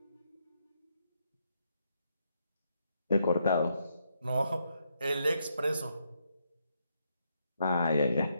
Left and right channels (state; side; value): inverted; both; correlation -0.78